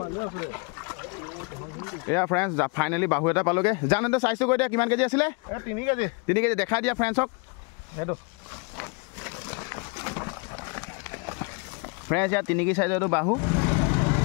এয়া ফ্ৰেণ্ডছ ফাইনেলি বাহু এটা পালোগে জানো চাইছোঁ গৈ দিয়া কিমান কেজি আছিলে 3 কেজি দেখাই দিয়া ফ্ৰেণ্ডছক সেইটো ফ্ৰেণ্ডছ ইয়াত 3 কেজি চাইজৰ এইটো বাহু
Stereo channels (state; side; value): quieter; right; 31.8 dB